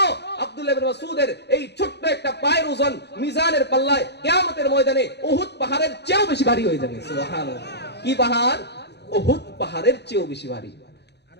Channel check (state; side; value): late; right; 0.49 ms